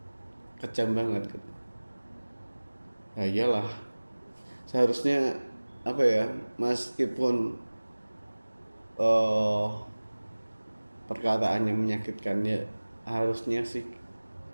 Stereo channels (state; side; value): inverted; both; correlation -1.00